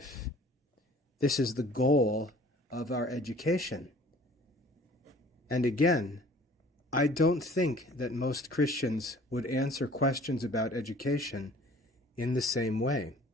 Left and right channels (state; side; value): normal; both; correlation 0.51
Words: This is the goal of our education. And again, I don't think that most Christians would answer questions about education in the same way.